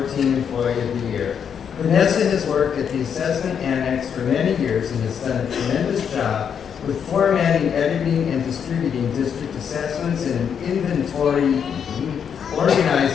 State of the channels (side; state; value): right; quieter; 7.6 dB